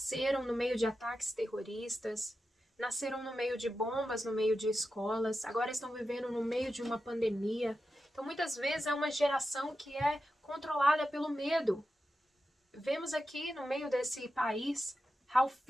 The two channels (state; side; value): normal; both; correlation 0.90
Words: no meio de ataques terroristas, nasceram no meio de bombas, no meio de escolas, agora estão vivendo no meio de uma pandemia. Então, muitas vezes é uma geração que é controlada pelo medo. Vemos aqui no meio desse país how